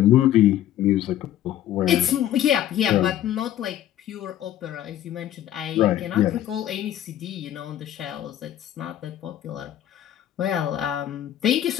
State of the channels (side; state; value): right; quieter; 12.0 dB